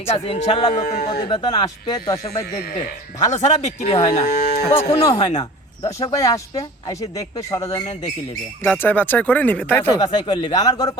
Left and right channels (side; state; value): both; normal; correlation 0.40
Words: আছে, ইনশাআল্লাহ নতুন প্রতিবেদন আসবে, দর্শক ভাই দেখবে। ভালো ছাড়া বিক্রি হয় না, কখনো হয় না। দর্শক ভাই আসবে, এসে দেখবে, সরজমিনে দেখে নেবে, যাচাই বাছাই করে নিবে, তাই তো? বাছাই করে নেবে। আমার গরু